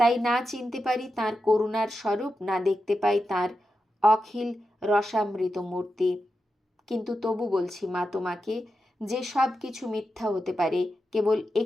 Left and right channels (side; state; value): both; normal; correlation 0.89